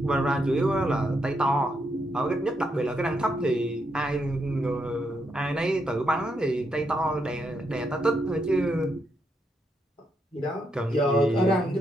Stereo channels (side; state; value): both; normal; correlation 0.79